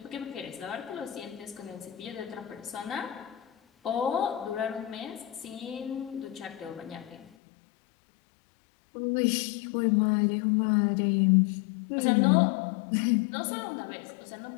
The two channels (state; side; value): drops out; right; at 7.3 s